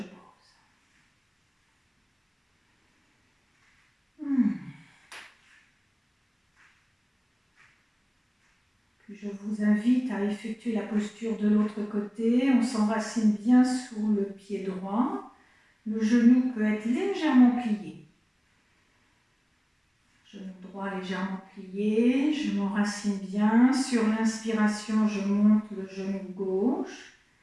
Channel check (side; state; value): both; identical; correlation 1.00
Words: pose. Puis je vous invite à effectuer la posture de l'autre côté. On s'enracine bien sous le pied droit. Le genou peut être légèrement plié. Genou droit légèrement plié. Je m'enracine bien. Sur l'inspiration, je monte le genou gauche.